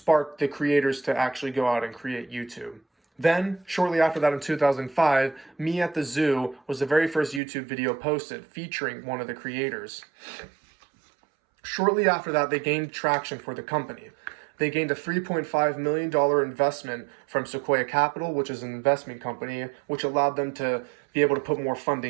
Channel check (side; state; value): left; drops out; at 7.4 s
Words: the creators to actually go out and create YouTube. Then, shortly after that in 2005, Me at the Zoo was the very first YouTube video posted featuring one of the creators. Shortly after that, they gained traction for the company. They gained a $3.5 million investment from Sequoia Capital, which is an investment company, which allowed them to be able to put more